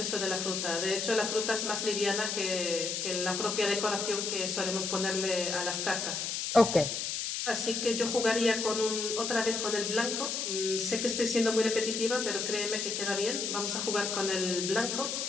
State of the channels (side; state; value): left; noise; hiss, 2 dB below the sound